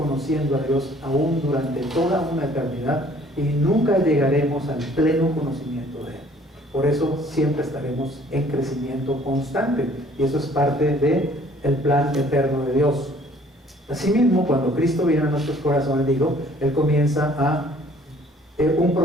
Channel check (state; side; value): normal; both; correlation 0.57